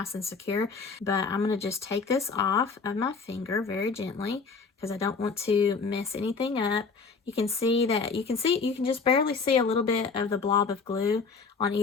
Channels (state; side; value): quieter; right; 4.9 dB